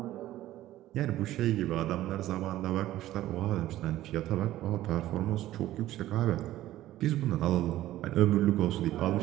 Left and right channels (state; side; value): quieter; left; 14.5 dB